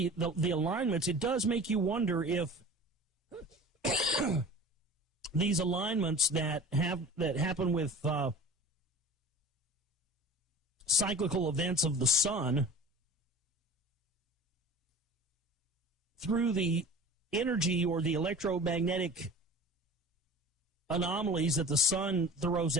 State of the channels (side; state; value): both; normal; correlation 0.39